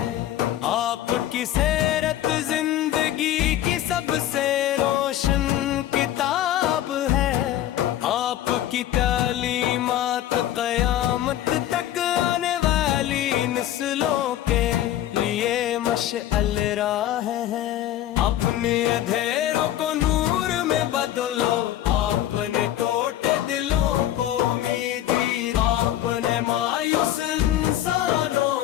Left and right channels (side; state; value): right; quieter; 12.6 dB